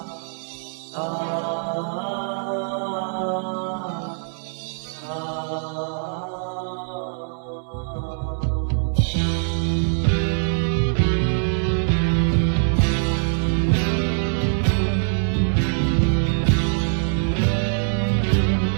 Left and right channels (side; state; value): left; silent; digital silence